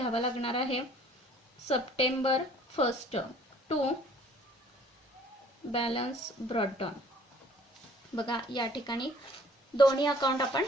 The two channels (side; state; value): both; normal; correlation 0.55